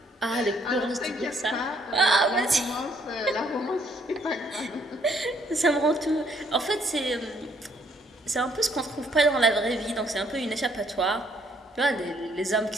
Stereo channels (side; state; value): both; normal; correlation 0.67